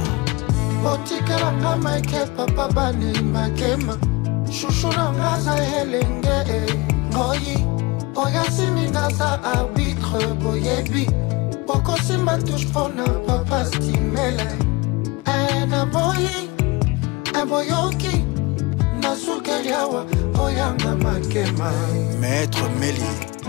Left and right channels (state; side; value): quieter; right; 24.1 dB